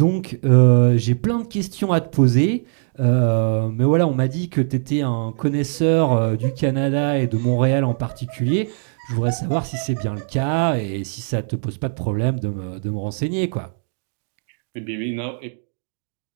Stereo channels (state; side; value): silent; left; digital silence